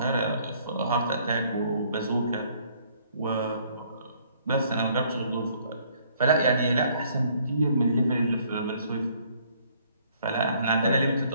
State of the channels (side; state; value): both; inverted; correlation -0.63